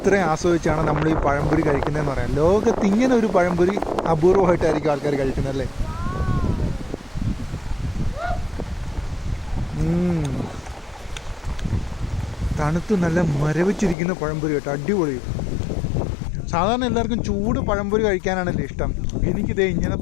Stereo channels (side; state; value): right; drops out; at 14.0 s